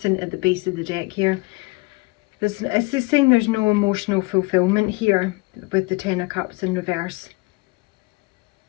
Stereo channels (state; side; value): quieter; right; 24.9 dB